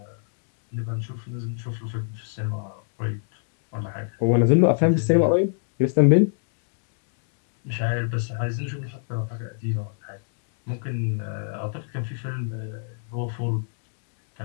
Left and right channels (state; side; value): silent; right; digital silence